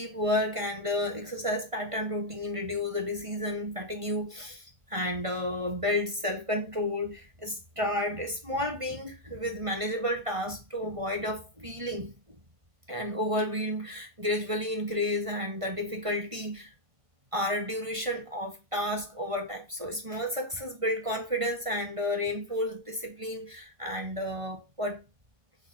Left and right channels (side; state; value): left; late; 1.5 ms